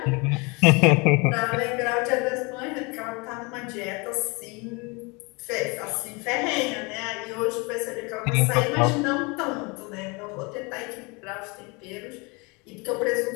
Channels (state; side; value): quieter; right; 28.4 dB